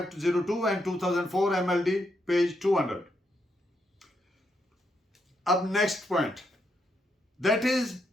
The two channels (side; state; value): both; normal; correlation 0.79